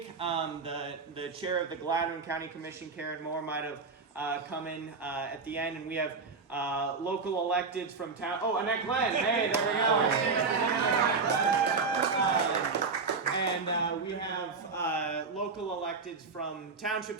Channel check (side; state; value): left; quieter; 4.6 dB